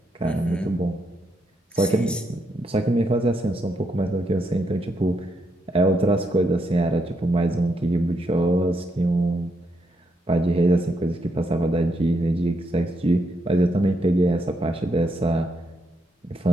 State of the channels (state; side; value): normal; both; correlation 0.79